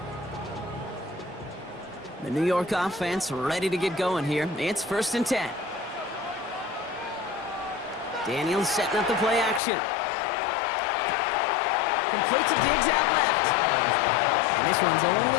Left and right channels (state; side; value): drops out; right; at 9.6 s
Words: The New York offense ready to get going here. It's 1st and 10. Daniels setting up the play action. Complete to Diggs out left. And this one's only